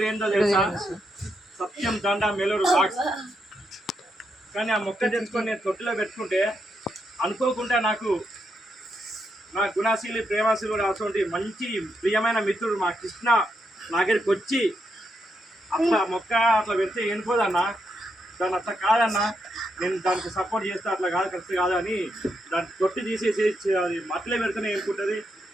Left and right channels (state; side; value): normal; both; correlation 0.81